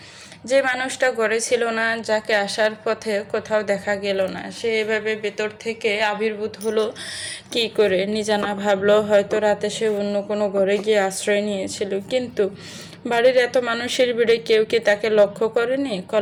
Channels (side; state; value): both; identical; correlation 1.00